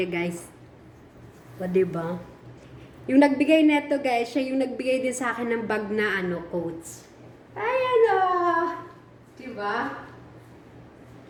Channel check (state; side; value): identical; both; correlation 1.00